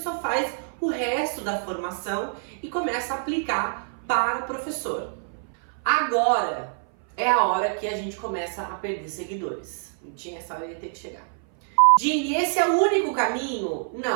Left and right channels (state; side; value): silent; left; 58 dB below the other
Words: faz o resto da formação e começa a aplicar para professor. Agora é a hora que a gente começa a perder seguidores. Não tinha essa hora, ia ter que chegar. Dini, esse é o único caminho?